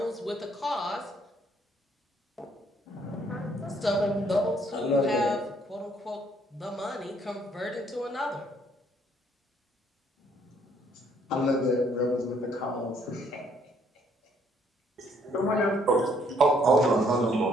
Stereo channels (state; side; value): normal; both; correlation 0.66